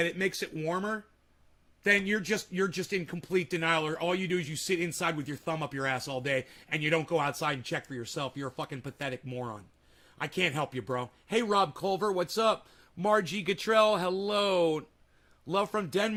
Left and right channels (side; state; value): both; identical; correlation 1.00